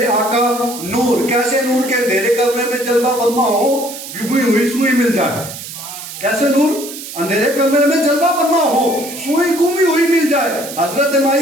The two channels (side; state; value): right; noise; hiss, 11 dB below the sound